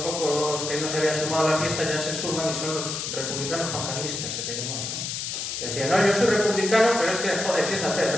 que no se habían sumado a la fiesta, ya se suman y son los republicanos juancarlistas, que se llamaban, ¿no? Decían, no, yo soy republicano, pero es que, joder, fíjate, el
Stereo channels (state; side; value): noise; left; hiss, 4 dB below the sound